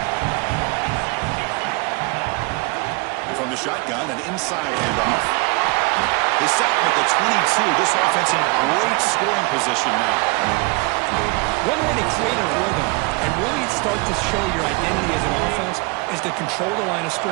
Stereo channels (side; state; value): left; quieter; 28.0 dB